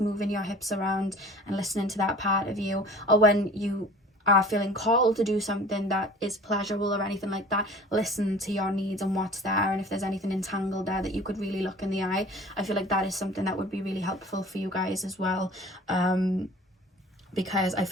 your hips around and listening to that part of you. Or when you are feeling called to do something that is pleasurable or anything like that, listen to your needs and what's there, and if there's anything entangled there that you could really look in the eye. I feel like that is something that would be really helpful for you guys as well, because I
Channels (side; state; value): both; normal; correlation 0.45